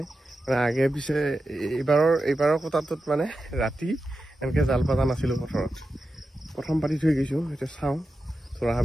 মানে আগে পিছে এইবাৰৰ কোটাটোত মানে ৰাতি এনেকৈ জাল পাতা নাছিলোঁ পথৰত প্ৰথম পাতি থৈ গৈছোঁ এতিয়া চাওঁ থোৰা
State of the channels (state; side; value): normal; both; correlation 0.91